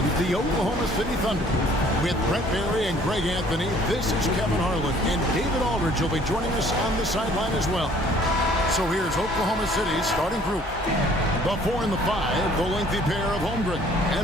the Oklahoma City Thunder. With Brent Barry and Greg Anthony, this is Kevin Harlan, and David Aldridge will be joining us on the sideline as well. So here's Oklahoma City's starting group. The 4 and the 5, the lengthy pair of Holmgren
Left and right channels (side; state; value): both; normal; correlation 0.57